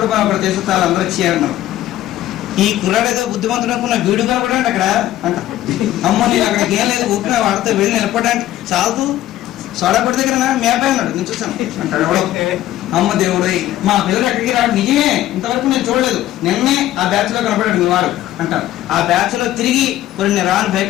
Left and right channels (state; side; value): quieter; right; 13.8 dB